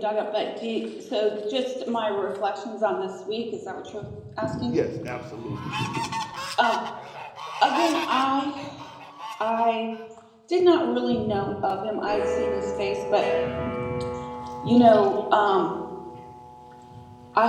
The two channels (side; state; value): both; identical; correlation 1.00